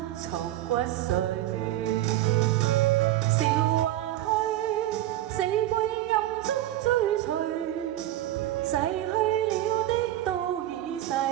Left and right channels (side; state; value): left; quieter; 14.0 dB